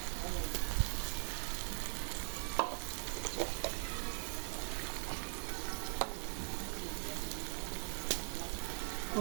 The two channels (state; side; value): silent; left; 50 dB below the other